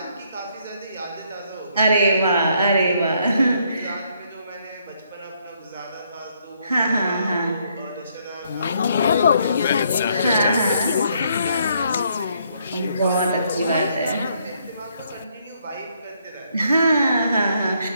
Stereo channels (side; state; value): both; inverted; correlation -0.71